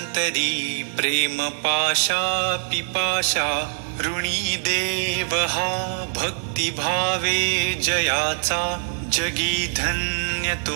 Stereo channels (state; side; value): silent; left; digital silence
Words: प्रेम पाशा पिपाशा ऋणी देव हा भक्ती भावे जयाचा जगी धन्य